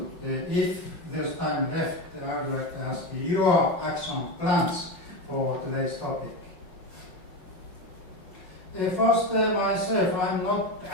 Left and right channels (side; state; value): right; late; 5.3 ms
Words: if there's time left, I would like to ask you your action plans for today's topic. First, myself, I'm not